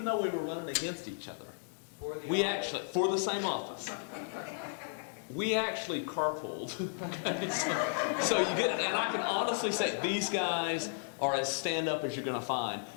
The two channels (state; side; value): silent; right; digital silence